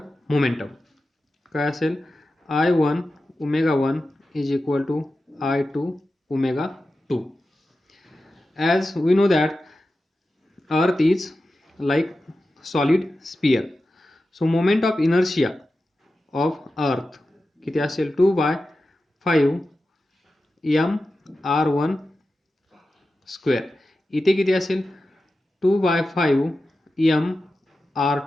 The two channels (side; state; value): both; normal; correlation 0.93